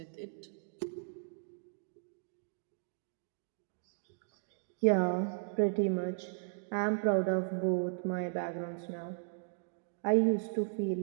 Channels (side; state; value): left; silent; digital silence